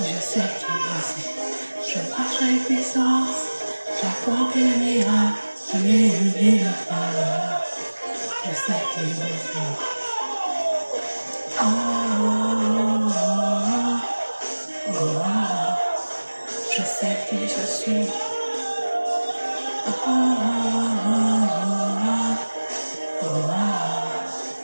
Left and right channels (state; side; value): inverted; both; correlation -1.00